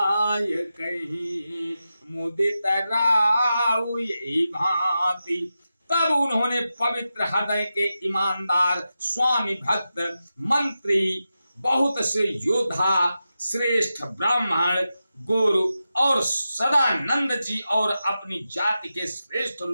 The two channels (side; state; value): both; inverted; correlation -0.91